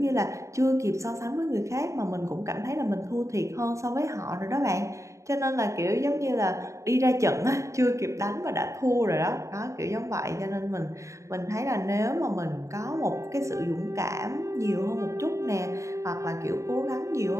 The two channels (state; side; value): late; left; 0.15 ms